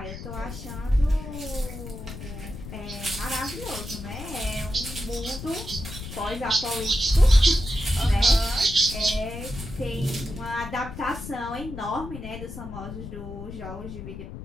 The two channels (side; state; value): left; noise; rumble, 10 dB below the sound